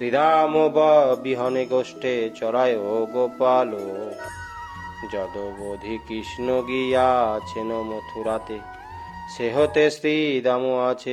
বিহনে গোষ্ঠে চরায় গোপাল। যদবধি কৃষ্ণ গিয়াছেন মথুরাতে, সে হতে শ্রীদাম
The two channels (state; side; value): identical; both; correlation 1.00